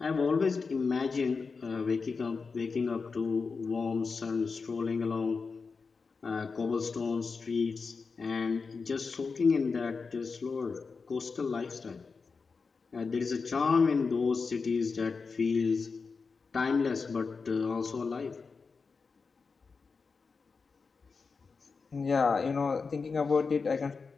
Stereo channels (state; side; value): quieter; right; 4.8 dB